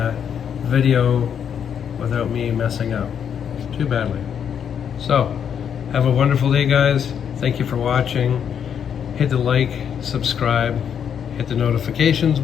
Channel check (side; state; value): right; quieter; 8.1 dB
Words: video without me messing up too badly. So, have a wonderful day, guys. Thank you for watching. Hit the like, subscribe, hit the notifications